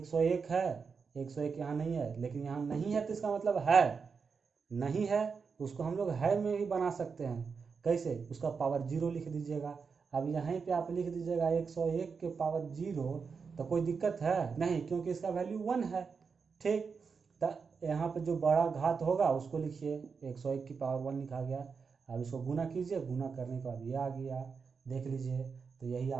है, 101 यहाँ नहीं है, लेकिन यहाँ नहीं है तो इसका मतलब है, नहीं है उसको हम लोग है में ही बना सकते हैं। कैसे, उसका पावर 0 लिख दीजिएगा। अब यहीं पे आप लिख दीजिएगा 101 के पावर 0, तो कोई दिक्कत है नहीं, क्योंकि इसका वैल्यू 1 है। ठीक, तो यहाँ पे जो बड़ा घात होगा उसको लिखिए, 101 की पावर 1 लिखा गया। अब इसको गुना कीजिए, गुना करने के बाद ये आ गया, देख लीजिए, तो यही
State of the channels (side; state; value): left; quieter; 5.5 dB